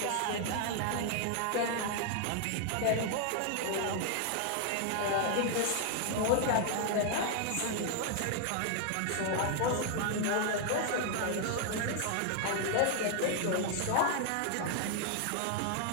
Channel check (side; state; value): both; different; correlation 0.00